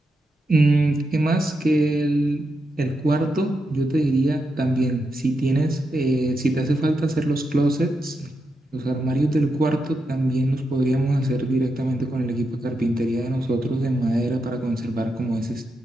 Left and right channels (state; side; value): normal; both; correlation 0.85